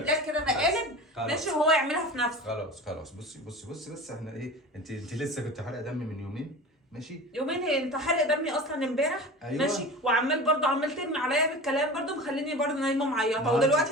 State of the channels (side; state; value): both; normal; correlation 0.34